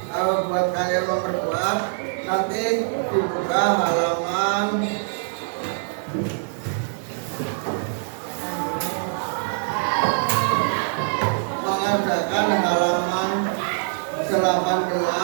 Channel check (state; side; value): silent; left; digital silence